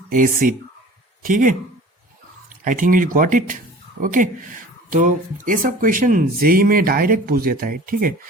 acid. ठीक है, I think you got it. Okay, तो ये सब क्वेश्चन जेई में डायरेक्ट पूछ देता है। ठीक है,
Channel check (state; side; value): normal; both; correlation 0.43